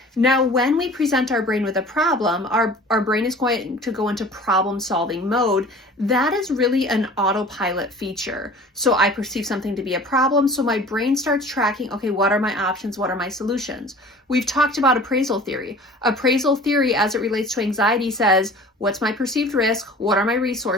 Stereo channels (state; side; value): normal; both; correlation 0.44